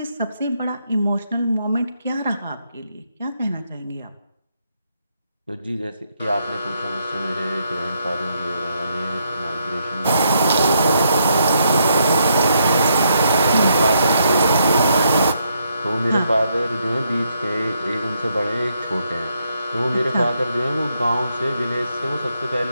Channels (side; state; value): both; inverted; correlation -0.76